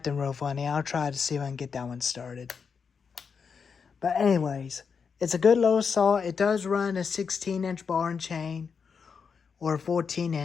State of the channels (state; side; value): quieter; right; 6.0 dB